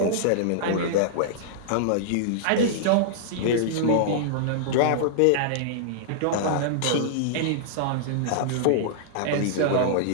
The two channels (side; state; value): both; different; correlation -0.02